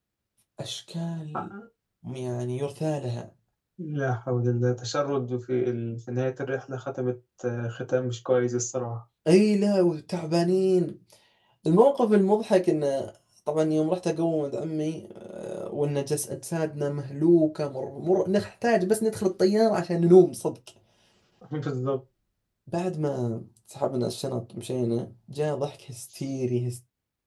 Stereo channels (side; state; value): both; identical; correlation 1.00